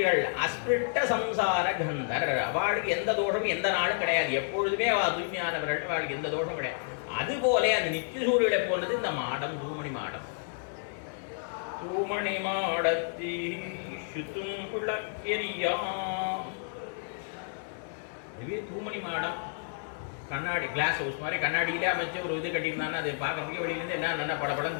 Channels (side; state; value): right; silent; 57 dB below the other